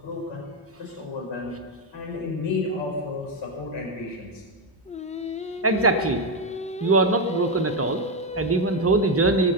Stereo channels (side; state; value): both; normal; correlation 0.07